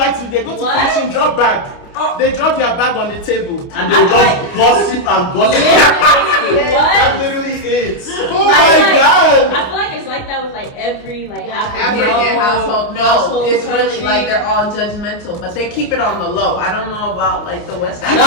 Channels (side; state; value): right; late; 29 ms